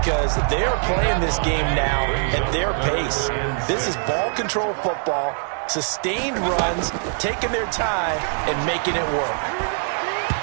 they're playing this game now at their pace. This is ball control football, sustained runs, taking their time, and making it work.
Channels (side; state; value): left; silent; 64 dB below the other